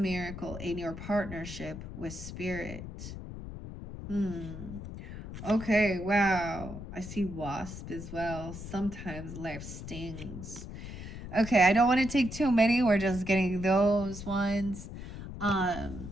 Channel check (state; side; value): noise; left; rumble, 10 dB below the sound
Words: in your partnership with Spirit. Okay, wow. I see wasp as well. Sometimes life stings. Okay, I don't want to take too many. We're just getting those ones. Oh